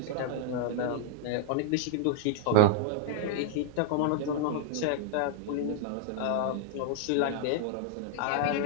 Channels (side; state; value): both; different; correlation -0.01